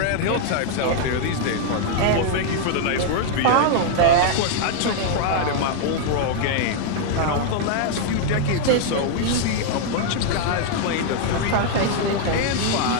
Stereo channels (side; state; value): both; different; correlation 0.00